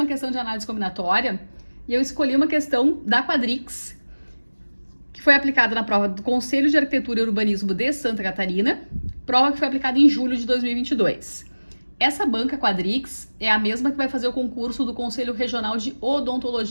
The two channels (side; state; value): both; inverted; correlation -1.00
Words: questão de análise combinatória e eu escolhi uma questão da Quadrix, que foi aplicada na prova do Conselho de Arquitetura e Urbanismo de Santa Catarina, prova que foi aplicada em julho de 2022. Essa banca Quadrix é a mesma que vai fazer o concurso do Conselho Regional de